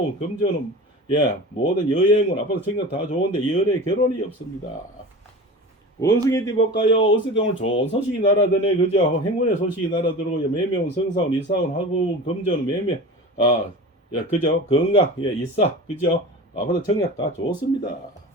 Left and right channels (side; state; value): both; normal; correlation 0.33